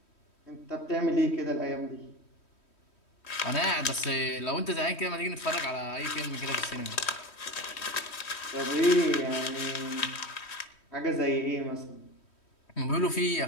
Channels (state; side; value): late; right; 3.1 ms